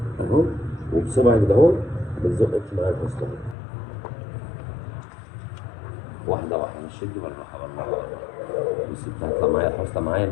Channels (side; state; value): right; drops out; at 3.6 s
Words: اهو، وبصبعك ده اهو بتزقك معايا الفصل واحده واحده، مش شدي بالراحه. بس طلعت معايا الحصلة معايا